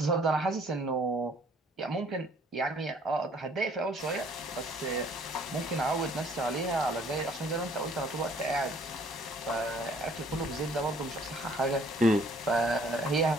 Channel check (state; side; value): normal; both; correlation 0.60